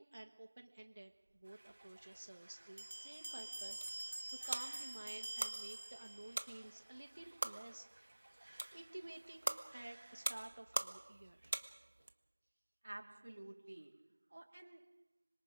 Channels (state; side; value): inverted; both; correlation -1.00